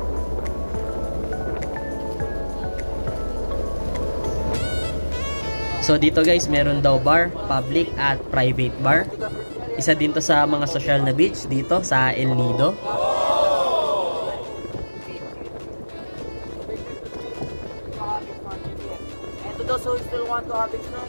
So dito guys, meron daw bar, public at private bar. Isa din to sa mga social na beach dito sa El Nido. So if you want to have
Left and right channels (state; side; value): inverted; both; correlation -1.00